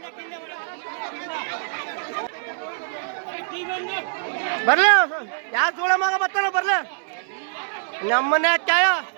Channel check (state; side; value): silent; left; 59 dB below the other